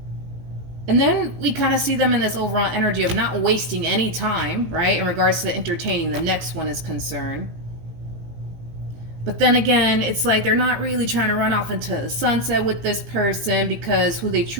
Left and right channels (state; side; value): late; left; 18 ms